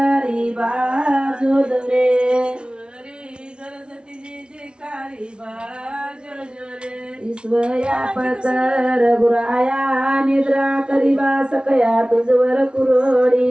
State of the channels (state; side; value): late; left; 0.057 ms